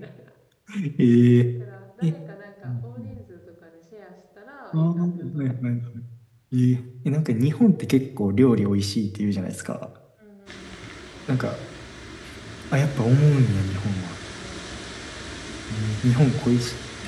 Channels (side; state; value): both; identical; correlation 1.00